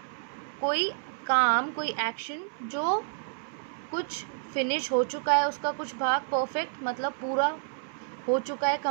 कोई काम, कोई एक्शन जो कुछ फिनिश हो चुका है, उसका कुछ भाग, परफेक्ट मतलब पूरा हो चुका है,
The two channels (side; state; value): left; silent; 58 dB below the other